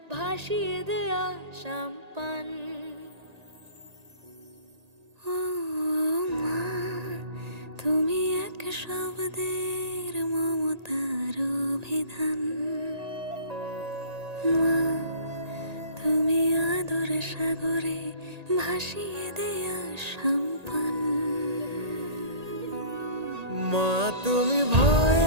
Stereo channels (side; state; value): left; late; 1.8 ms